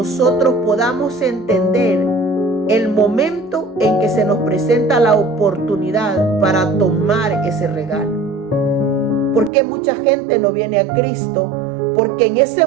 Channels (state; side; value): drops out; left; at 9.5 s